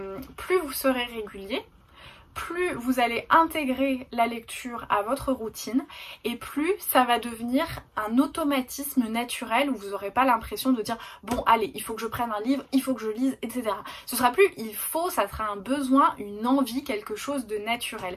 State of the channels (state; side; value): identical; both; correlation 1.00